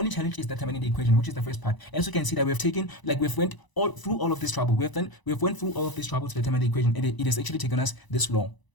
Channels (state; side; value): late; right; 1.0 ms